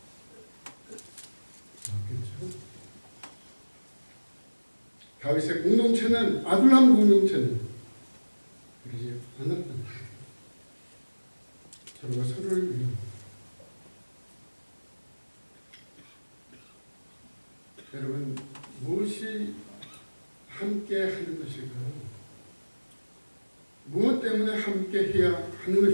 없겠죠. 다윗의 공동체는, 아둘람 공동체는 그러지 않았다. 서로가 서로를 위해. 여러분, 무엇이 함께 하는 것일까요? 무엇 때문에 함께 해야 하는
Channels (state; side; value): inverted; both; correlation -1.00